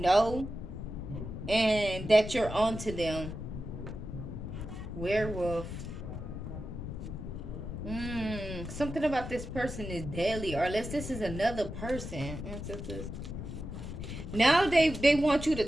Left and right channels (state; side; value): noise; left; rumble, 7 dB below the sound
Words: know, and that you're onto them. Werewolf. Something about this person is deadly, or unless this is another person. Now they want you to